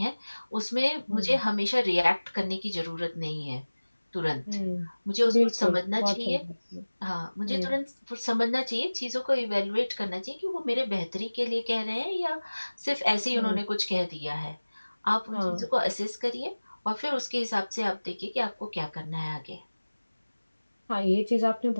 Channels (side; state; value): both; inverted; correlation -1.00